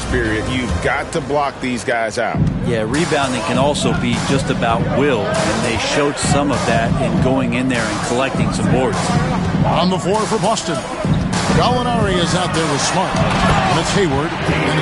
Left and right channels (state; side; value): identical; both; correlation 1.00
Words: period. You've got to block these guys out. Yeah, rebounding can also be just about will, and they showed some of that in going in there and collecting some boards. On the floor for Boston, Gallinari is out there with Smart. And it's Hayward, and